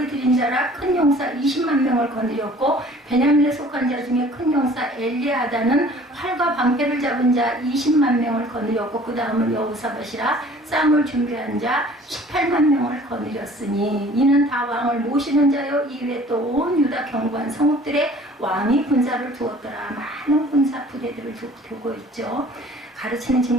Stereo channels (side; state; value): both; normal; correlation 0.50